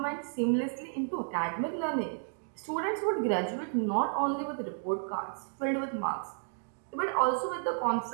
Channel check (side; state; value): left; silent; digital silence